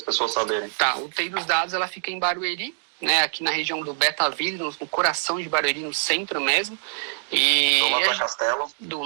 pessoas saberem. Tá, o TI dos dados ela fica em Barueri, né, aqui na região do Betaville, no coração de Barueri, no centro mesmo. E do lado da Castelo? Do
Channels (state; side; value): silent; left; digital silence